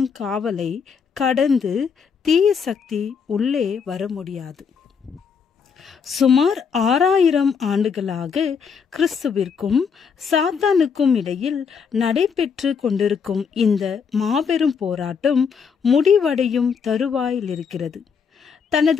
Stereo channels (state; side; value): quieter; right; 6.3 dB